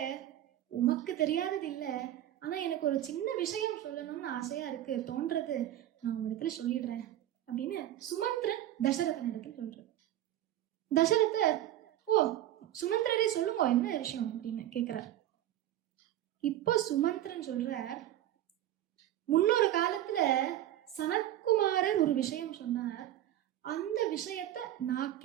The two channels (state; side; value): quieter; left; 12.9 dB